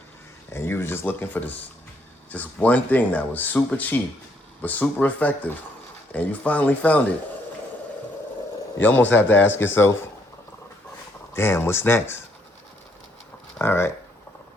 and you were just looking for this, just one thing that was super cheap, but super effective, and you finally found it, you almost have to ask yourself, damn, what's next? All right,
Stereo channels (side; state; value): both; normal; correlation 0.70